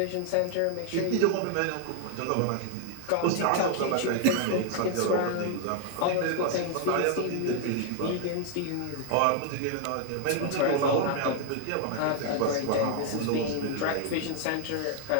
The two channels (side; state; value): both; different; correlation 0.00